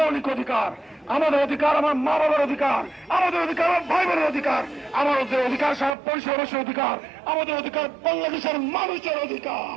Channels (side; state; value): left; drops out; at 6.0 s